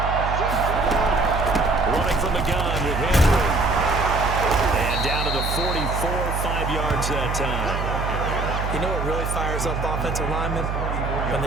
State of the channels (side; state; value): right; noise; hum, 3 dB below the sound